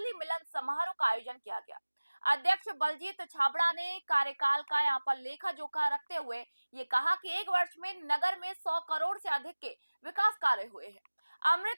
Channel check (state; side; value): inverted; both; correlation -1.00